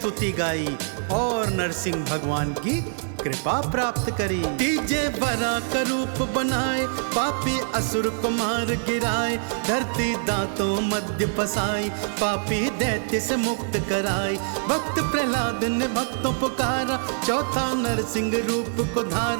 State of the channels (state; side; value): silent; left; 62 dB below the other